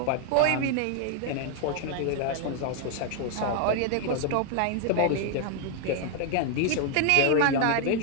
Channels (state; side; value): different; both; correlation 0.00